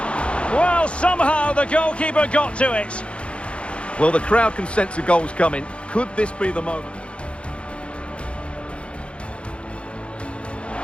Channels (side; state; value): right; late; 0.059 ms